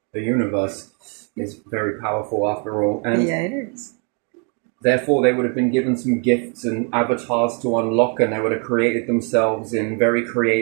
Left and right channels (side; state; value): left; quieter; 38.2 dB